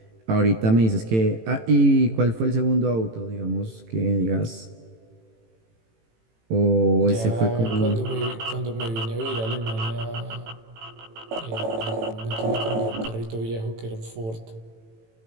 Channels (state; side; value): late; left; 18 ms